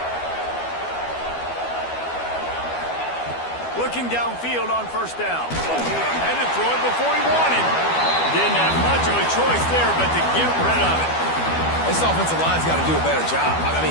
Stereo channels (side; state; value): right; late; 12 ms